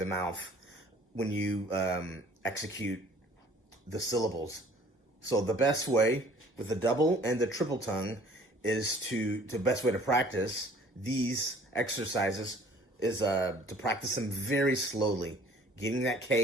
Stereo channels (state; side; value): normal; both; correlation 0.53